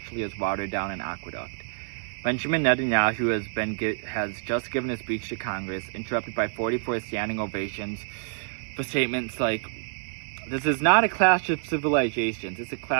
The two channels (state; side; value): silent; left; 60 dB below the other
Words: as water down an aqueduct. Benjamin Netanyahu has just given a speech to Congress, interrupted by 44 standing ovations for statements like, this is not a clash of civilizations, it's a